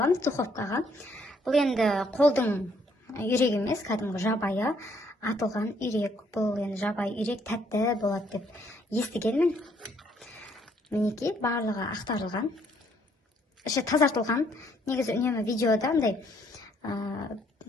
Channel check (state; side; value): normal; both; correlation 0.68